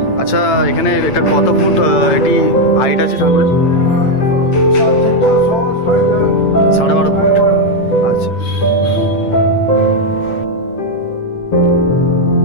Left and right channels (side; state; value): right; late; 8.9 ms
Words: আচ্ছা, এখানে এটা কত ফুট এটি হাইট আছে ঠাকুরের? 12.5 ফুট। আচ্ছা,